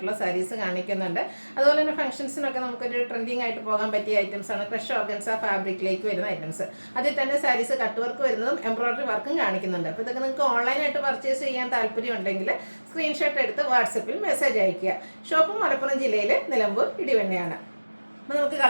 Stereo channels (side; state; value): both; inverted; correlation -1.00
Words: സാരീസ് കാണിക്കുന്നുണ്ട്. അതുപോലെ തന്നെ ഫംഗ്ഷൻസിനൊക്കെ നമുക്കൊരു ട്രെൻഡിങ് ആയിട്ട് പോകാൻ പറ്റിയ ഐറ്റംസാണ് ക്രഷ് ഓർഗൻസ ഫാബ്രിക്കിലേക്ക് വരുന്ന ഐറ്റംസ്. അതിൽ തന്നെ സാരീസ് കട്ട് വർക്ക് വരുന്നതും എംബ്രോയിഡറി വർക്കും കാണിക്കുന്നുണ്ട്. അപ്പോൾ ഇതൊക്കെ നിങ്ങൾക്ക് ഓൺലൈനായിട്ട് പർച്ചേസ് ചെയ്യാൻ താല്പര്യം ഉണ്ടെങ്കിൽ സ്ക്രീൻഷോട്ട് എടുത്ത് വാട്സപ്പിൽ മെസ്സേജ് അയയ്ക്കുക. ഷോപ്പ് മലപ്പുറം ജില്ലയിലെ നിലമ്പൂർ ഇടിവണ്ണയാണ്. അപ്പോൾ നമുക്ക്